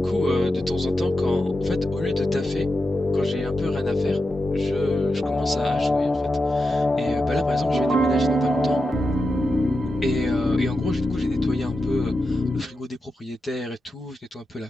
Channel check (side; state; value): both; normal; correlation 0.89